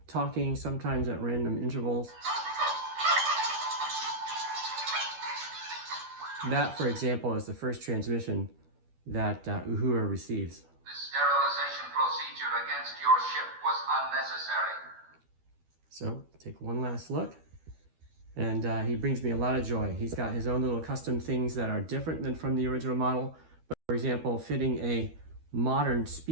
talking, sometimes at random intervals. That, for example, is the first transmission that Uhura receives. The sterilization procedure against your ship was unnecessary. So, take one last look. And he brings me a lot of joy. He's got his own little custom things that are different than from the original model. But for example, fitting a modern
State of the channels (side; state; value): left; late; 12 ms